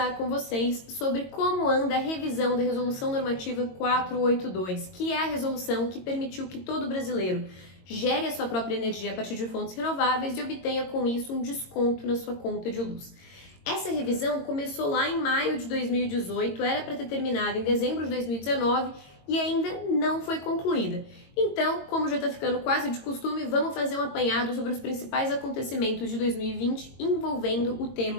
com vocês sobre como anda a revisão da Resolução Normativa 482, que é a resolução que permitiu que todo brasileiro gere a sua própria energia a partir de fontes renováveis e obtenha com isso um desconto na sua conta de luz. Essa revisão começou lá em maio de 2018, era para ter terminado em dezembro de 2019 e ainda não foi concluída. Então, como já está ficando quase de costume, vamos fazer um apanhado sobre os principais acontecimentos de 2020 envolvendo o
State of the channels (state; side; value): late; right; 22 ms